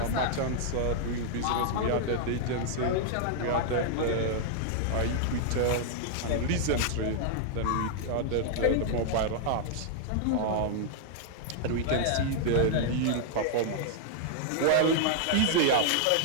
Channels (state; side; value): different; both; correlation -0.01